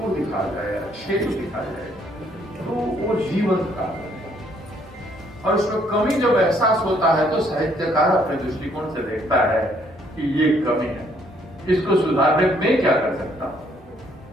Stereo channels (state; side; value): normal; both; correlation 0.67